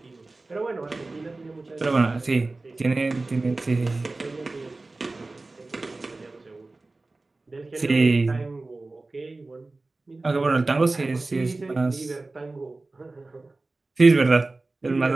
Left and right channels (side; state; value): left; quieter; 3.3 dB